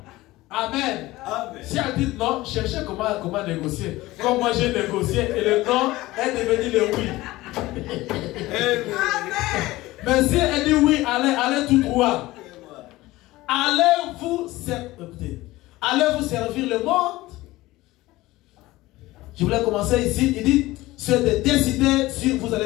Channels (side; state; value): right; quieter; 18.5 dB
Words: Amen. Amen. Si elle dit non, cherchez comment négocier. Comme moi j'ai négocié et le non est devenu le oui. Amen. Mais si elle dit oui, allez tout droit. Allez vous servir le monde. Je voulais commencer ici. Il dit, c'est de décider si vous